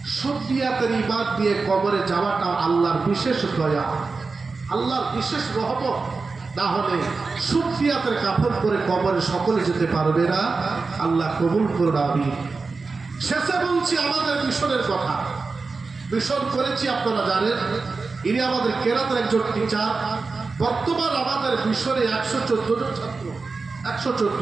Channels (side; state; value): left; quieter; 4.2 dB